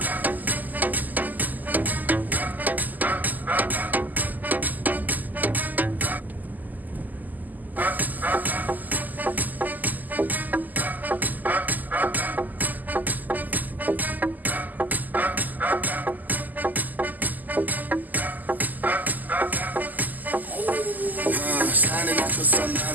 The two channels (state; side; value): late; left; 0.083 ms